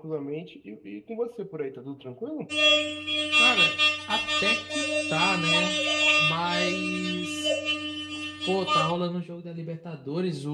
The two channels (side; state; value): both; identical; correlation 1.00